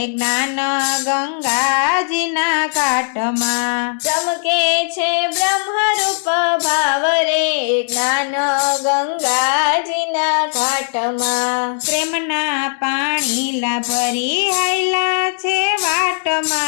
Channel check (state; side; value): silent; right; 56 dB below the other